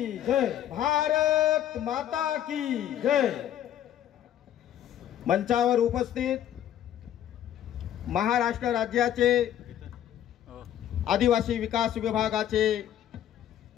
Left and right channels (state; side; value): quieter; right; 11.1 dB